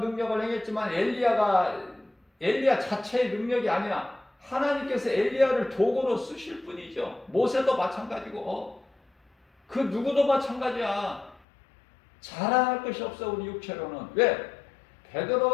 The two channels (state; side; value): drops out; right; at 11.4 s